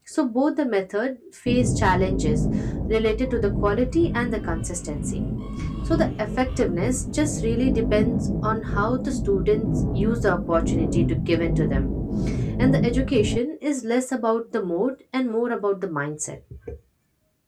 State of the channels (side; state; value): both; identical; correlation 1.00